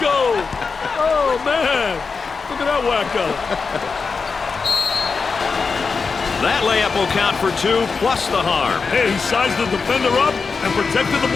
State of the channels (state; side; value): quieter; right; 4.9 dB